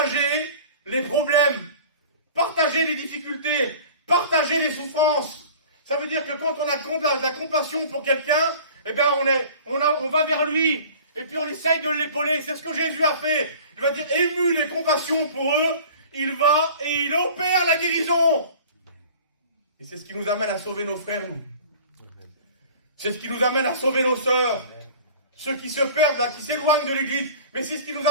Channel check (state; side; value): inverted; both; correlation -0.44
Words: les problèmes, partager les difficultés, partager les souffrances. Ça veut dire que quand on a de la compassion pour quelqu'un, eh bien on va vers lui. Et puis on essaye de l'épauler. C'est ce que Jésus a fait. Il va dire, ému de compassion pour eux, il va et il opère la guérison. Et c'est ce qui nous amène à sauver nos frères, nous. C'est ce qui nous amène à sauver nos sœurs. Ceux qui se perdent, là, qui s'éloignent de l'église. Mais c'est ce qui nous